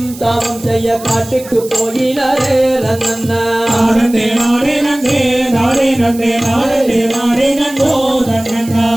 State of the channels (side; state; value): right; noise; hiss, 17 dB below the sound